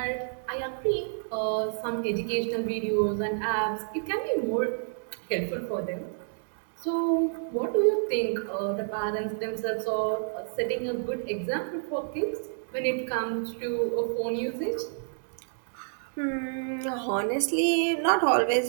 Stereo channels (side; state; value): left; silent; digital silence